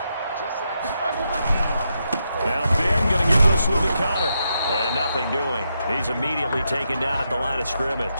Now Ben going to give this one to Connor. And nothing doing. He's immediately taken down at the line of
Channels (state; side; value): inverted; both; correlation -0.83